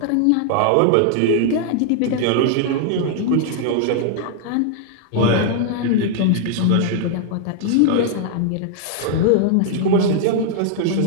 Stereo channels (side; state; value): both; different; correlation 0.00